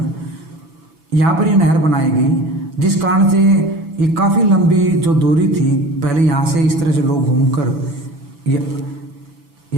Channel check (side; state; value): left; late; 6.0 ms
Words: पर ये नहर बनाई गई, जिस कारण से ये काफ़ी लंबी जो दूरी थी, पहले यहाँ से इस तरह से लोग घूमकर